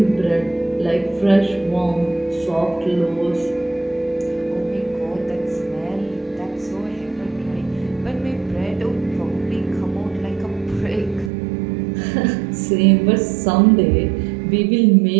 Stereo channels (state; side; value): drops out; left; at 11.3 s